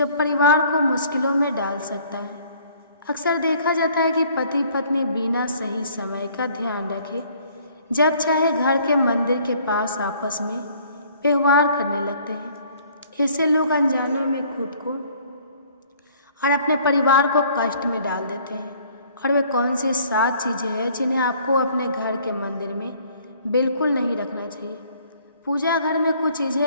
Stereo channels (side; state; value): both; inverted; correlation -0.57